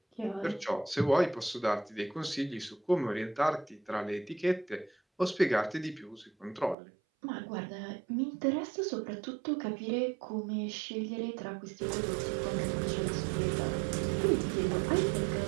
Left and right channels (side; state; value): left; drops out; at 6.8 s